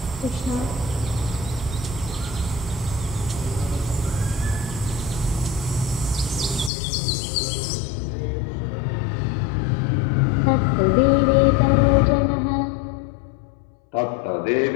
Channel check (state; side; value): drops out; right; at 6.7 s